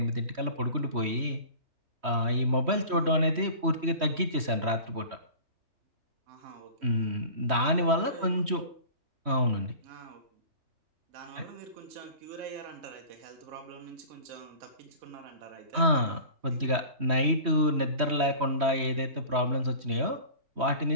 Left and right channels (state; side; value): late; left; 3.1 ms